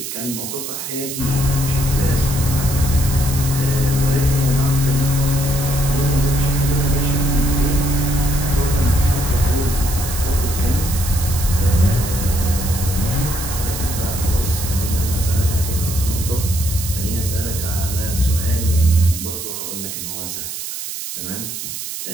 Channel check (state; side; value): noise; right; hiss, 7 dB below the sound